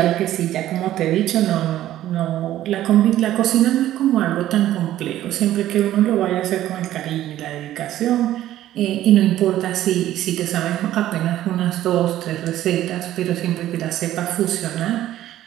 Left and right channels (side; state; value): left; quieter; 13.4 dB